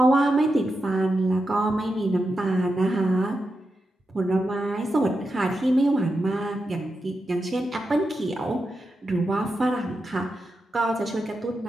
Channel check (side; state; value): both; normal; correlation 0.88